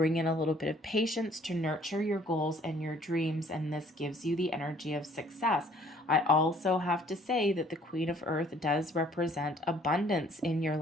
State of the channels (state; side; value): normal; both; correlation 0.58